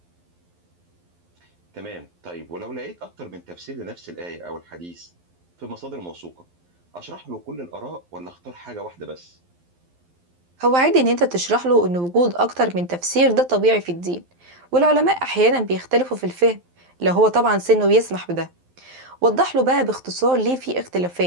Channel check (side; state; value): left; late; 12 ms